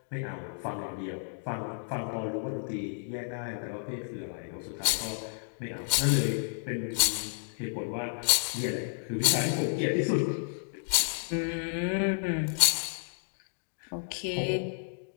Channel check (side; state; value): right; silent; digital silence